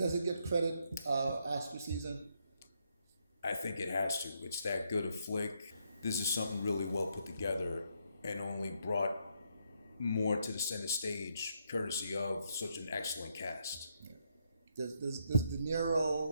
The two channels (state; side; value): inverted; both; correlation -0.76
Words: it get credit Oscar season? I think it has to. It's that good a flick. This is something really well put together and only brought more to the center stage courtesy of such an excellent cast. Yeah. Does De